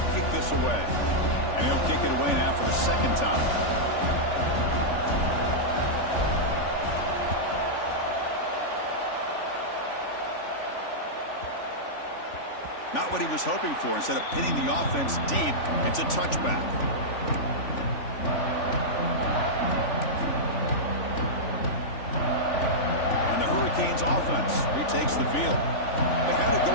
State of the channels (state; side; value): late; right; 3.4 ms